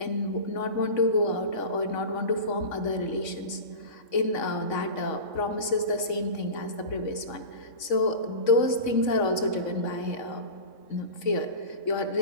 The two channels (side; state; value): right; late; 3.6 ms